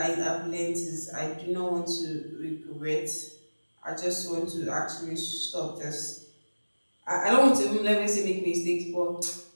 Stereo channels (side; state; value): both; inverted; correlation -1.00